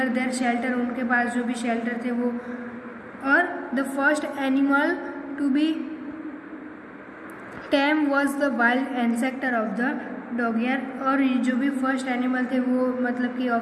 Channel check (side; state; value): both; identical; correlation 1.00